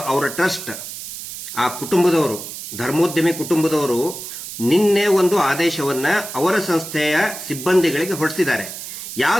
ಅವರ ಟ್ರಸ್ಟ್, ಆ ಕುಟುಂಬದವರು, ಧರ್ಮೋದ್ಯಮಿ ಕುಟುಂಬದವರು ನಿನ್ನೆ ಒಂದು ಆದೇಶವನ್ನ ಅವರ ಸಂಸ್ಥೆಯ ಸಿಬ್ಬಂದಿಗಳಿಗೆ ಹೊರಡಿಸಿದ್ದಾರೆ.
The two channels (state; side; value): noise; right; hiss, 10 dB below the sound